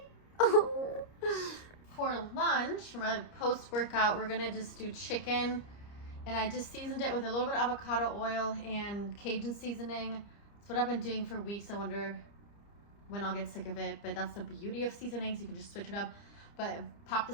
Oh. For lunch, for my post-workout, we're gonna just do chicken, and I just seasoned it with a little bit of avocado oil and Cajun seasoning. That's what I've been doing for weeks. I wonder when I'll get sick of it, but that's the beauty of seasonings. You can just switch it up. But pop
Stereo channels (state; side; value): late; right; 30 ms